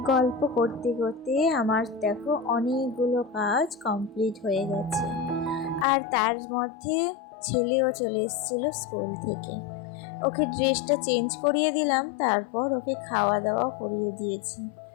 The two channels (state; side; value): drops out; right; at 5.9 s